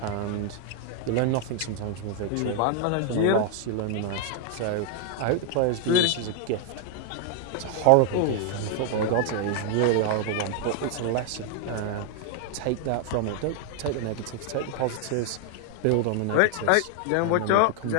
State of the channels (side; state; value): both; different; correlation 0.00